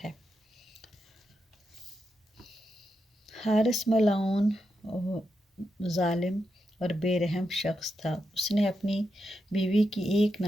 ہے۔ حارث ملعون ظالم اور بے رحم شخص تھا۔ اس نے اپنی بیوی کی ایک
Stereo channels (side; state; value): both; normal; correlation 0.86